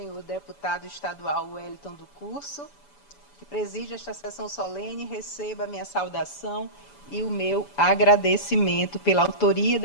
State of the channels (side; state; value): right; late; 7.0 ms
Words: deputado estadual Wellington do Curso, que preside esta sessão solene, receba a minha saudação e o meu agradecimento pela autoria